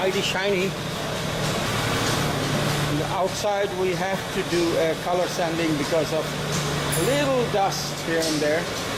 shiny. On the outside we have to do a color sanding because of a little dust here and there.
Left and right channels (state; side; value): identical; both; correlation 1.00